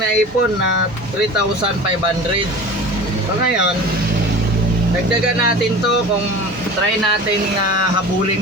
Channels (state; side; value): normal; both; correlation 0.37